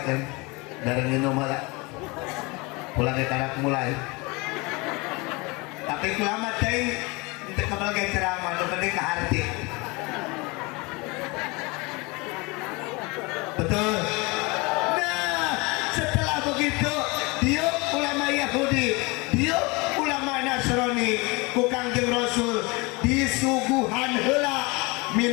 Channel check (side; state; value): right; quieter; 26.3 dB